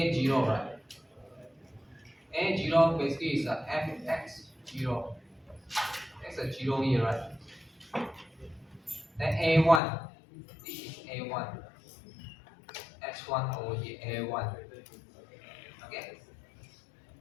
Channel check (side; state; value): right; drops out; at 9.8 s